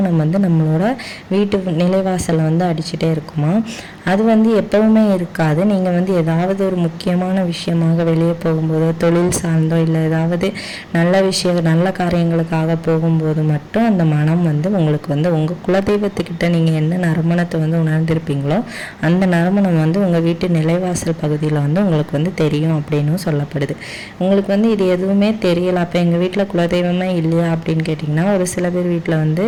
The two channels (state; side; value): identical; both; correlation 1.00